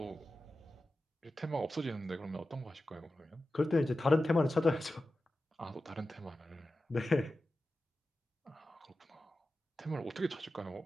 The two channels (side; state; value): both; normal; correlation 0.93